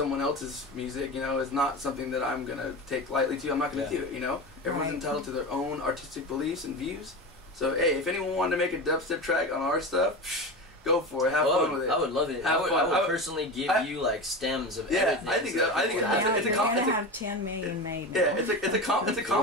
else's music, you know, is not something that I'm gonna take lightly to. I'm not gonna do it. You know, everyone's Right. entitled to their own artistic beliefs and views. So hey, if anyone wanted to make a dubstep track on our stuff, go for it. Have fun with it. I would love it. Have I fun. would personally give you like stems of everything. I think that- I think people it's- have. it's a You're com- gonna it's a- have 10 million made now. Yeah, it's a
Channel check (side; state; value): both; normal; correlation 0.25